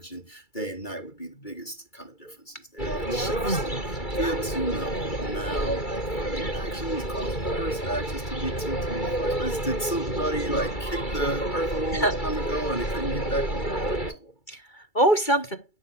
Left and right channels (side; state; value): right; late; 2.3 ms